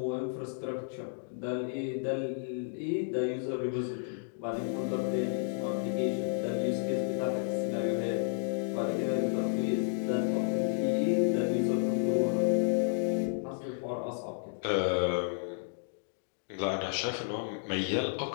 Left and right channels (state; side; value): silent; right; digital silence